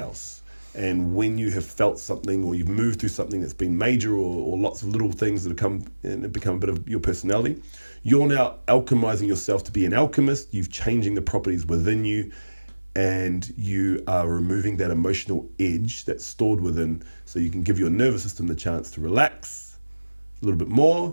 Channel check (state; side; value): inverted; both; correlation -1.00